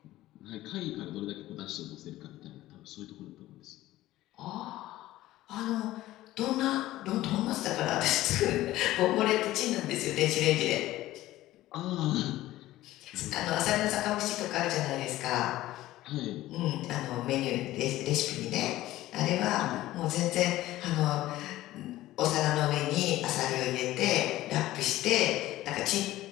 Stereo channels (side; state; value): right; quieter; 15.8 dB